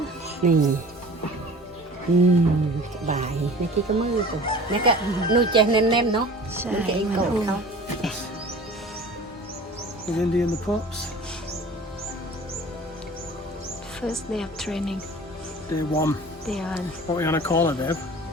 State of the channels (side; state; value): both; normal; correlation 0.42